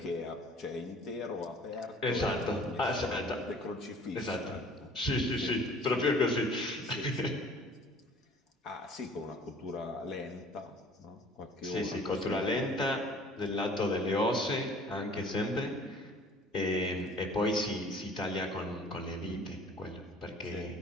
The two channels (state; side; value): normal; both; correlation 0.51